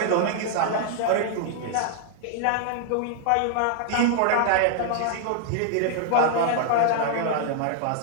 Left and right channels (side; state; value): both; different; correlation 0.00